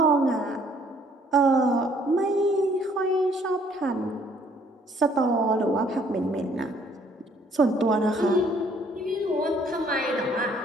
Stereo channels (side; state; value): both; normal; correlation 0.62